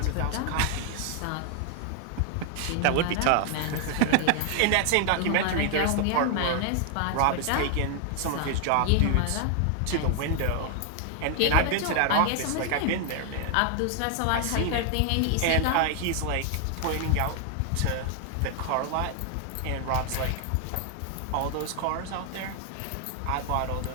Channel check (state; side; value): different; both; correlation 0.00